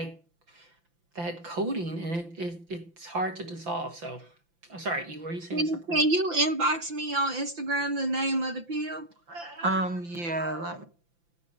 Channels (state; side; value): late; left; 5.9 ms